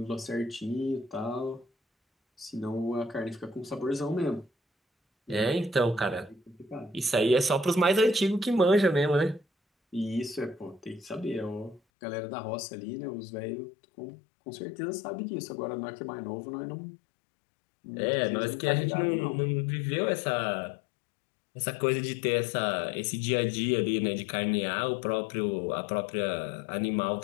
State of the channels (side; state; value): right; drops out; at 11.8 s